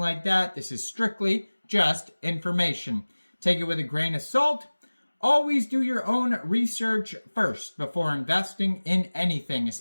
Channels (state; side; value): inverted; both; correlation -1.00